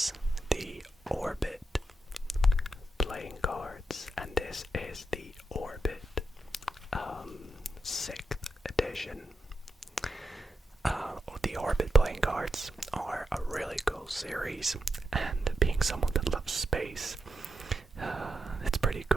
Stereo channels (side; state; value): both; normal; correlation 0.85